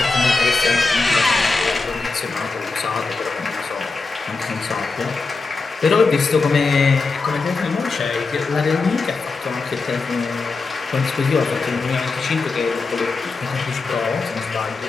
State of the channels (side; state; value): right; quieter; 4.0 dB